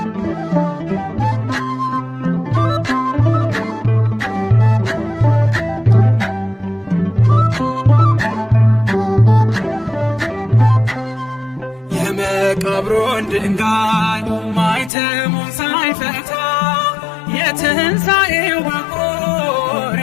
የመቃብሩን ድንጋይ ማኅተሙን ሳይፈታ የትንሣኤው በኩር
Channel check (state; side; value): drops out; right; at 14.9 s